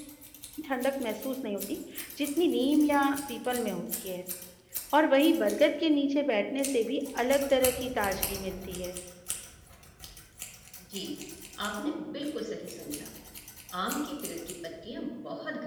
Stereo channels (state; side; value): identical; both; correlation 1.00